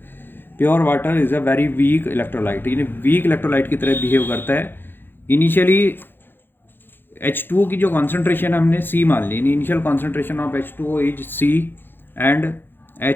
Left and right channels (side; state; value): right; late; 0.10 ms